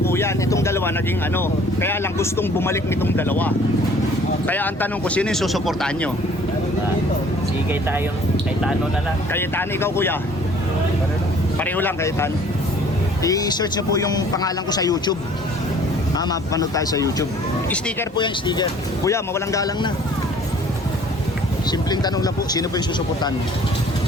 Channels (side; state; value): both; normal; correlation 0.54